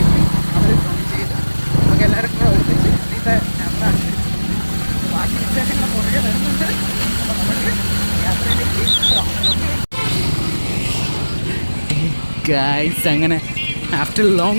എത്തി അവർ ജോയിൻ ചെയ്ത് നമുക്ക് എല്ലാവരും കൂടെ ഒരുമിച്ച് ഇന്നത്തെ യാത്ര അനുസരിച്ച് ബാക്കി വിശേഷങ്ങൾ പുറകെ വരുന്നുണ്ട്. അപ്പോൾ നമുക്ക് യാത്രയിലേക്ക് പോകാം. ഗൈസ്, അങ്ങനെ ആഫ്റ്റർ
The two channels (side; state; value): both; inverted; correlation -1.00